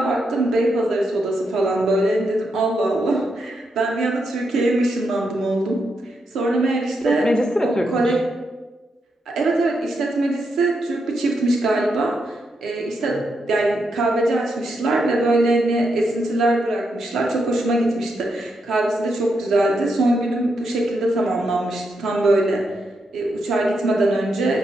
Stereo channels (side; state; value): both; normal; correlation 0.82